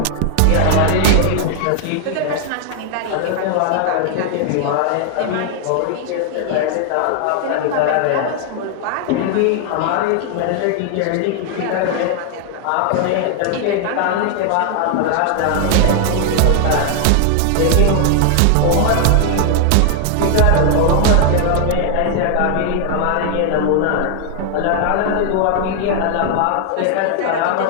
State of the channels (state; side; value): different; both; correlation 0.00